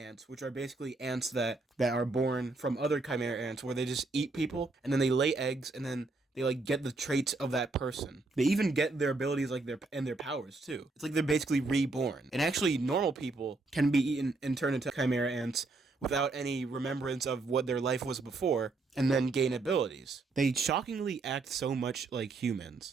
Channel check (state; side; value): quieter; left; 3.5 dB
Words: which are basically ants that are born from other Chimera ants, where they just eat people, and then they lay eggs, and then they like get the traits of that person. They even get their abilities their powers too. It's like they're basically reborn. And actually, normal people can be eaten and turn into Chimera ants without any remembrance of what their life was before, and then gain abilities. They shockingly act so much like